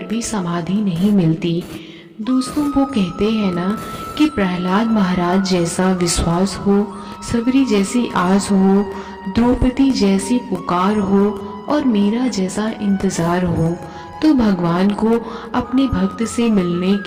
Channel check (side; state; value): both; identical; correlation 1.00